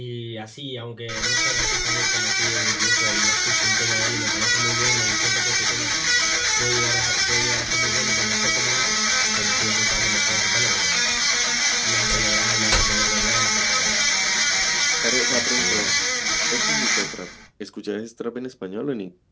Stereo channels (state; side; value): identical; both; correlation 1.00